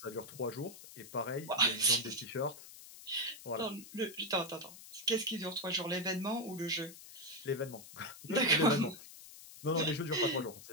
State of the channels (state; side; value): noise; left; hiss, 16 dB below the sound